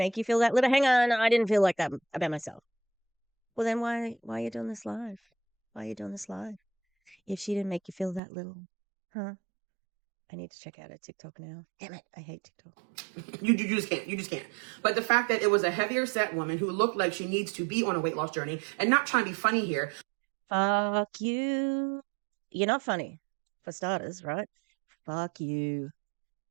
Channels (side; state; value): left; drops out; at 8.2 s